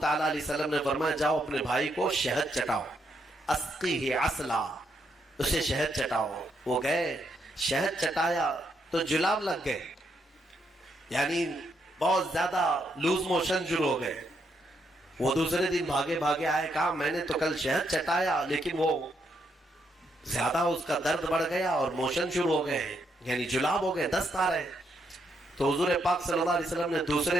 علیہ وسلم نے فرمایا جاؤ اپنے بھائی کو شہد چٹاؤ، اسقیہ عسلا، اسے شہد چٹاؤ۔ وہ گئے، شہد چٹایا تو جلاب لگ گئے، یعنی بہت زیادہ لوز موشن شروع ہو گئے۔ وہ دوسرے دن بھاگے بھاگے آئے، کہا میں نے تو کل شہد چٹایا لیکن وہ زیادہ اس کا درد بڑھ گیا اور موشن شروع ہو گئے، یعنی جلاب ہو گئے، دست آ رہے۔ تو حضور پاک صلی اللہ علیہ وسلم نے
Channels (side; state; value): both; normal; correlation 0.77